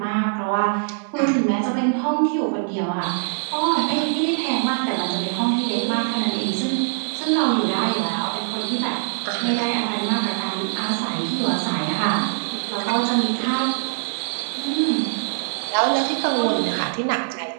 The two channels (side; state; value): left; silent; digital silence